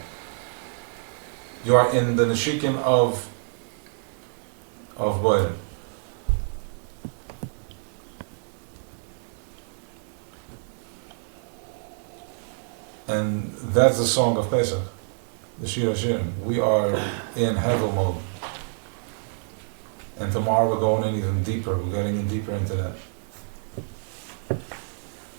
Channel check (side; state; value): left; silent; digital silence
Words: You are in the Neshikin of Boire. And that's the song of Pesach, the Shir HaShirim. We are in Hevel mode. And tomorrow we're going in even deeper. We're getting in deeper into that.